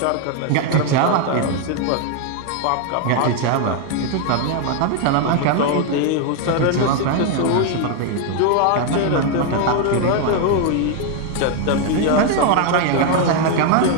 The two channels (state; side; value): different; both; correlation 0.01